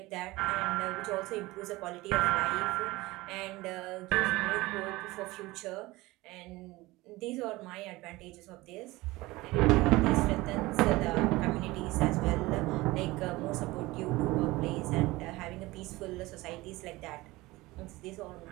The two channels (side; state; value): left; quieter; 20.3 dB